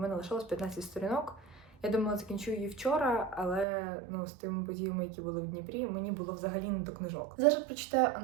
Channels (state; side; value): drops out; left; at 3.7 s